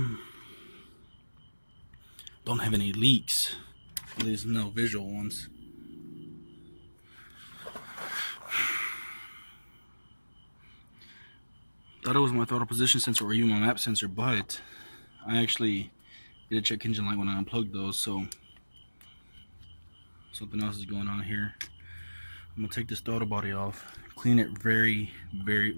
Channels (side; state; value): both; inverted; correlation -1.00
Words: have any leaks. There's no visual ones. Thought it was my throttle position sensor or even my map sensor, but I actually did a check engine light when I unplugged those, so something else is going on here. I'm gonna take this throttle body off, clean it very